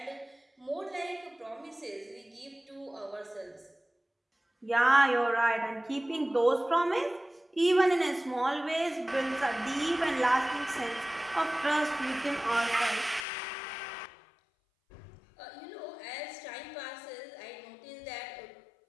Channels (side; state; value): right; drops out; at 13.2 s